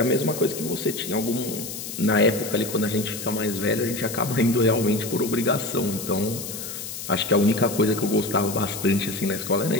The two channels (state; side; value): noise; left; hiss, 8 dB below the sound